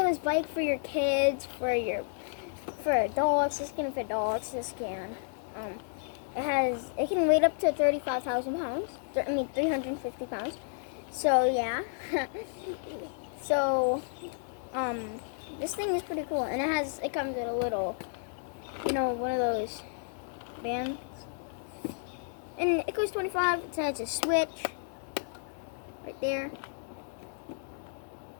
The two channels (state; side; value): silent; right; digital silence